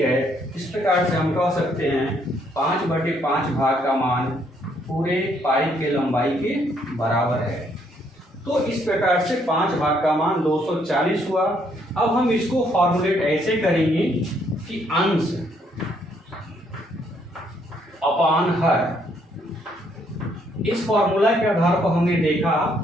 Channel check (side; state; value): both; normal; correlation 0.70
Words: इस प्रकार से हम कह सकते हैं 5/5 भाग का मान पूरे पाइप के लंबाई के बराबर है। तो इस प्रकार से 5 भाग का मान 240 हुआ। अब हम इसको फॉर्मुलेट ऐसे करेंगे कि अंश अपान हर। इस फॉर्मूला के आधार पर हमने देखा